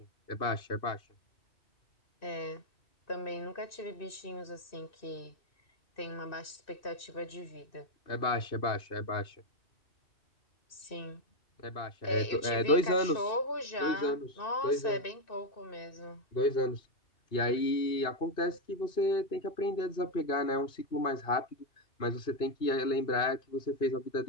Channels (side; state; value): right; late; 2.6 ms